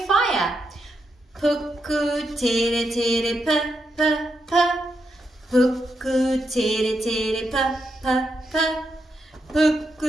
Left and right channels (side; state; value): both; normal; correlation 0.83